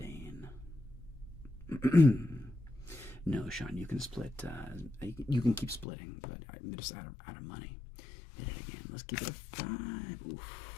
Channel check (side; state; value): right; drops out; at 5.9 s